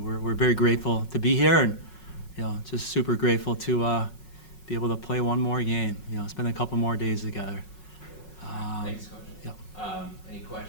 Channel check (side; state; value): right; late; 5.4 ms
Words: we're very grateful to be here, and just super grateful to be able to play one more game. Spend a couple more days together. Thanks, Coach. Yep. Any